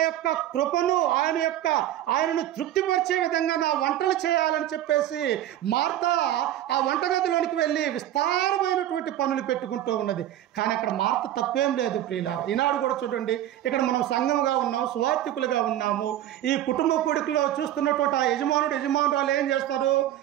యొక్క కృపను ఆయనను తృప్తిపరిచే విధంగా నా వంటలు చేయాలని చెప్పేసి మార్త ఆ వంటగదిలోనికి వెళ్ళి విస్తారమైనటువంటి పనులు పెట్టుకుంటూ ఉన్నది. కానీ అక్కడ మార్త తప్పేం లేదు ప్రియులారా. ఈనాడు కూడా చూడండి, ఇక్కడ మనం సంఘంగా ఉన్నాం, సువార్థికులుగా ఉన్నాము. ఈ కుటుంబ కూడికలో చూస్తున్నటువంటి ఆ యజమానురాలు ఏం చేస్తారు?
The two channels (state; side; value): quieter; left; 12.6 dB